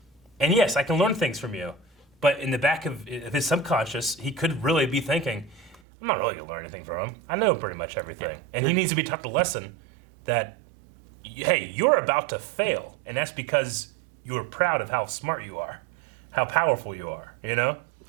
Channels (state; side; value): drops out; left; at 5.8 s